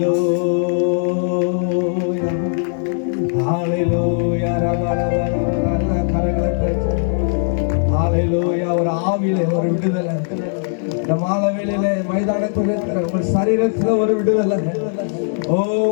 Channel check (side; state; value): right; silent; digital silence